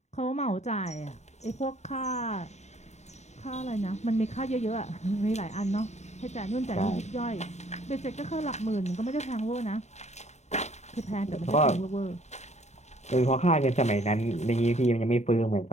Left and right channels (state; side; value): late; right; 0.33 ms